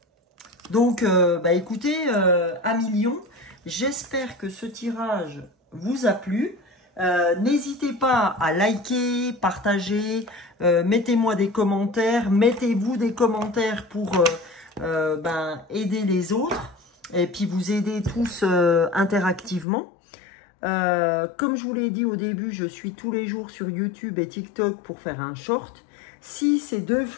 Donc, bah, écoutez, amis lions, j'espère que ce tirage vous a plu. N'hésitez pas à liker, partager, mettez-moi des commentaires, mettez-vous des commentaires pour aider les autres et puis vous aider tous interactivement. Comme je vous l'ai dit au début, je suis tous les jours sur YouTube et TikTok pour faire un short. Si ces deux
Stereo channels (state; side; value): drops out; right; at 19.7 s